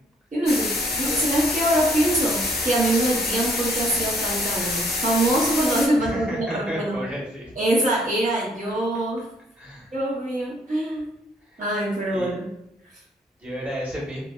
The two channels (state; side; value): normal; both; correlation 0.64